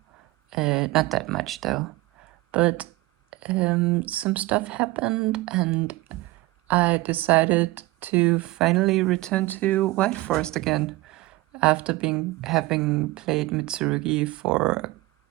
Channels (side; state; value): left; quieter; 20.2 dB